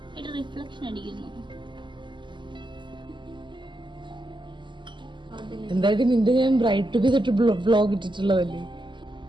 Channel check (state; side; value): late; left; 0.23 ms